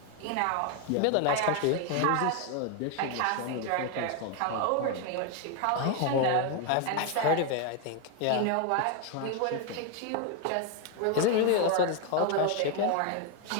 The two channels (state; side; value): different; both; correlation 0.01